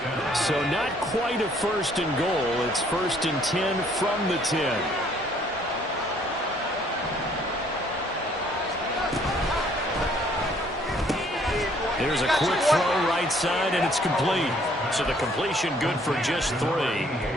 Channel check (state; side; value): normal; both; correlation 0.62